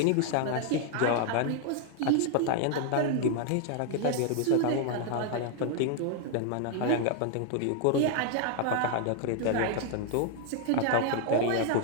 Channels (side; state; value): both; different; correlation 0.00